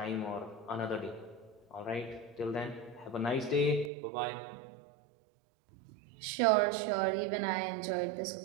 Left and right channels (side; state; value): left; drops out; at 3.9 s